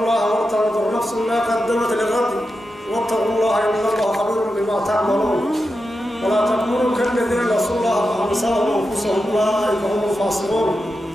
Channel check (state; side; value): normal; both; correlation 0.89